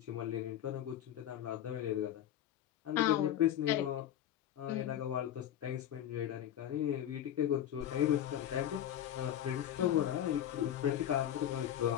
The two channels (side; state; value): right; quieter; 10.9 dB